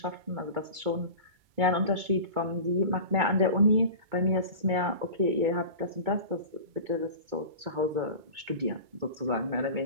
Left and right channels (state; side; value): late; left; 2.2 ms